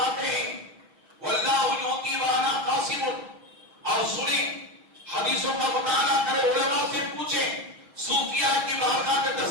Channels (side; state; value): left; late; 6.2 ms